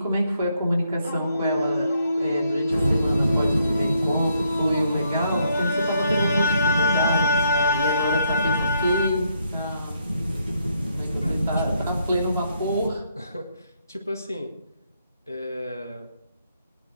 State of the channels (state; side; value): inverted; both; correlation -0.73